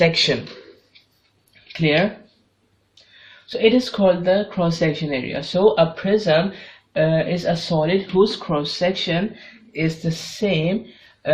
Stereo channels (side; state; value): both; identical; correlation 1.00